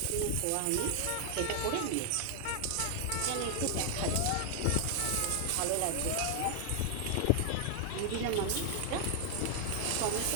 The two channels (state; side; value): different; both; correlation 0.00